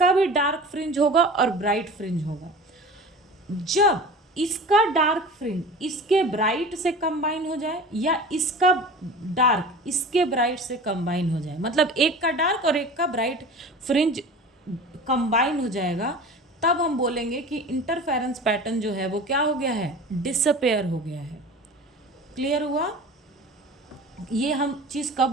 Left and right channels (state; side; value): normal; both; correlation 0.37